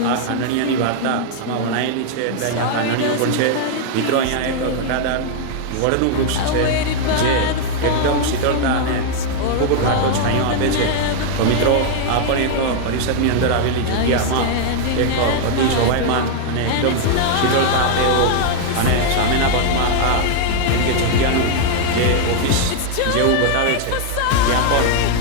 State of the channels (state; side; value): different; both; correlation 0.00